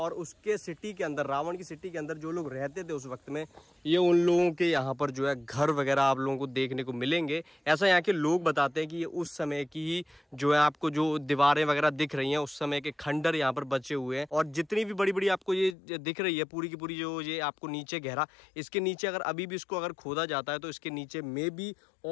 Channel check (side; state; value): right; drops out; at 15.8 s